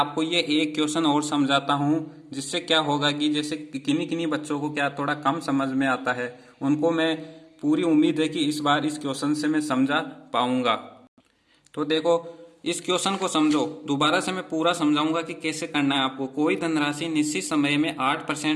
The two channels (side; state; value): both; identical; correlation 1.00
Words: ये एक क्वेश्चन और समझाता हूँ, जिससे क्या होगा कि जैसे किन्हीं किन्हीं बच्चों को क्या थोड़ा कम समझ में आता है, उनको मैं पूरी उम्मीद है कि इस बार इस क्वेश्चन से मैं समझा पाऊंगा। तो देखो इस क्वेश्चन को समझो, दोबारा से मैं पूरा समझाऊंगा कि कैसे करना है आपको। कोई धनराशि निश्चित समय में